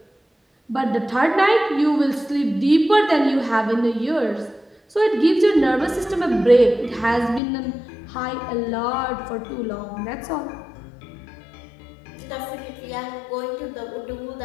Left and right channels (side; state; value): right; drops out; at 7.4 s